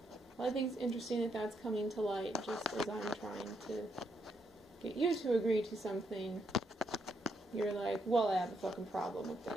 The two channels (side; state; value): both; normal; correlation 0.78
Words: Well, I think it's interesting that that's coming to light just as I'm trying to get you to agree to something. You're like, well, I have a fucking problem with